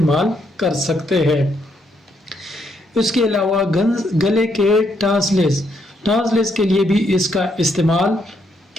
کر سکتے ہیں۔ اس کے علاوہ گلے کے ٹانسلز کے لیے بھی اس کا استعمال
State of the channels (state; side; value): normal; both; correlation 0.75